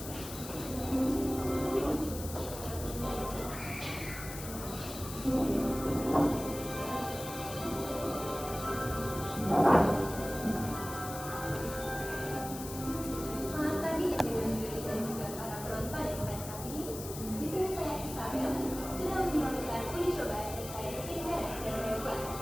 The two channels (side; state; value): left; noise; hiss, 10 dB below the sound